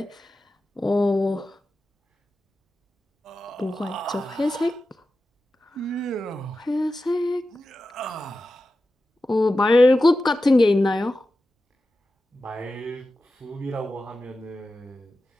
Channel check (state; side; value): normal; both; correlation 0.93